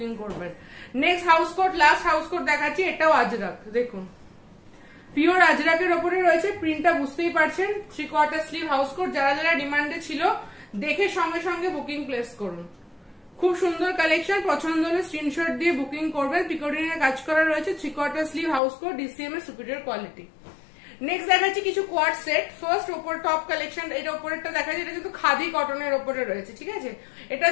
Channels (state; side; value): drops out; right; at 18.6 s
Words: করবেন। Next house coat, last house coat দেখাচ্ছি, এটাও আজরাক, দেখুন পিওর আজরাকের ওপরে রয়েছে। প্রিন্টটা বুঝতেই পারছেন, 3/4 স্লিভ হাউস কোট। যারা যারা ডিমান্ডে ছিল দেখে সঙ্গে সঙ্গে বুকিং প্লেস করুন। খুব সুন্দর কালেকশন, পছন্দ হলে স্ক্রিনশট দিয়ে বুকিং করবেন। পিকোটিনের কাজ করা রয়েছে, 3/4 স্লিভ হাউস কোট, ডিসিএম এর সুপিরিয়র কোয়ালিটি। নেক্সট দেখাচ্ছি কিছু কোয়াড সেট। ফার্স্ট ওপর টপ কালেকশন, এটা ওপরেরটা দেখাচ্ছি, এটা কিন্তু খাদি কটনের ওপরে রয়েছে, ঠিক আছে। এটা